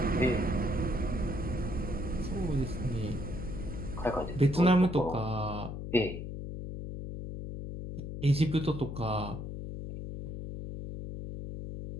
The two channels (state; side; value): noise; left; hum, 7 dB below the sound